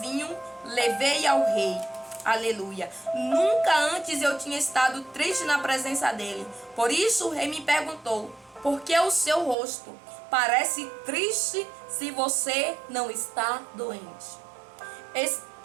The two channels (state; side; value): drops out; left; at 9.6 s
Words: levei ao rei. Aleluia. Nunca antes eu tinha estado triste na presença dele. Por isso o rei me perguntou: por que o seu rosto parece triste se você não está doente?